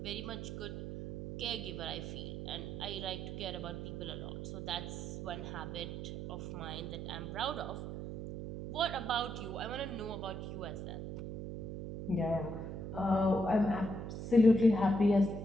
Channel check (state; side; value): noise; right; hum, 6 dB below the sound